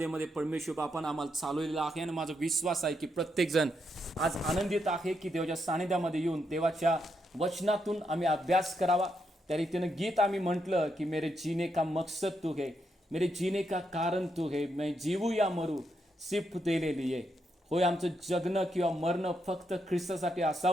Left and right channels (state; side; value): normal; both; correlation 0.80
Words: परमेश्वर बापानं आम्हाला चालवलेला आहे आणि माझा विश्वास आहे की प्रत्येक जण आज आनंदित आहे की देवाच्या सानिध्यामध्ये येऊन देवाच्या वचनातून आम्ही अभ्यास करावा। त्या रीतीनं गीत आम्ही म्हटलं की मेरे जीने का मकसद तू है, मेरे जीने का कारण तू है, मैं जीवू या मरू सिर्फ तेरे लिए। होय, आमचं जगणं किंवा मरणं फक्त ख्रिस्तासाठी